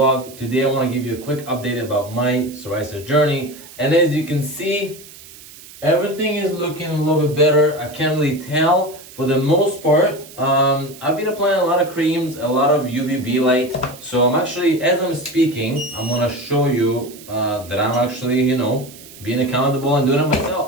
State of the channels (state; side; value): noise; right; hiss, 19 dB below the sound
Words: Today I want to give you a quick update about my psoriasis journey, and as you can see, everything is looking a little bit better. I can't really tell for the most part. I've been applying a lot of creams, a lot of UVB light, so I'm actually, as I'm speaking, I'm going to show you that I'm actually, being accountable and doing it